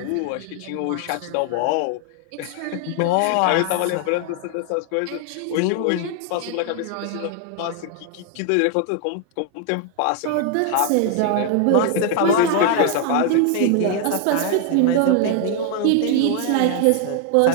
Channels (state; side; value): different; both; correlation 0.00